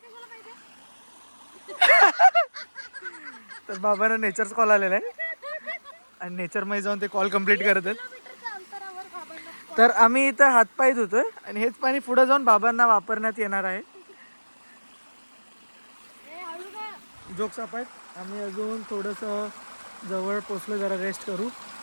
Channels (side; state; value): both; inverted; correlation -1.00